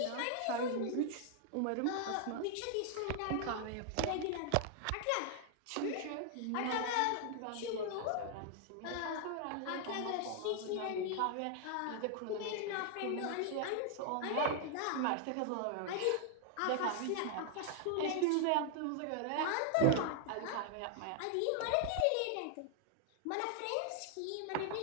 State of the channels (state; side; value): different; both; correlation 0.00